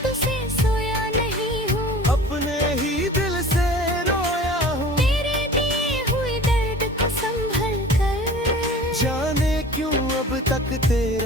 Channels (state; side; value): normal; both; correlation 0.42